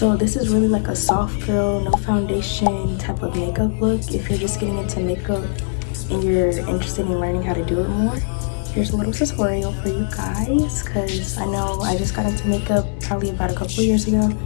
this is really like a soft girl, no foundation type of makeup look. If you're just getting into makeup and you're interested in learning how to do it more, here's a little tutorial for you guys, because I know I just got into makeup probably about a couple of years ago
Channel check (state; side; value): silent; right; 65 dB below the other